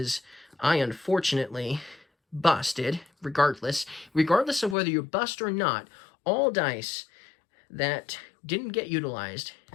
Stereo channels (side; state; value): right; drops out; at 4.8 s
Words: I unfortunately busted, regardless of whether you bust or not. All dice that didn't get utilized,